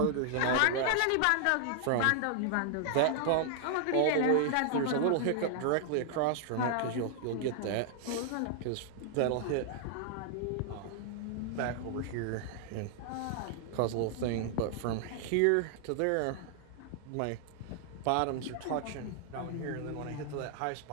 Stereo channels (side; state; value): both; different; correlation 0.00